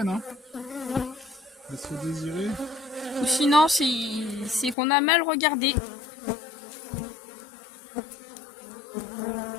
hein? Elle se fait désirer. Ou sinon, c'est qu'on a mal regardé. Là,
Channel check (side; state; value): right; drops out; at 4.8 s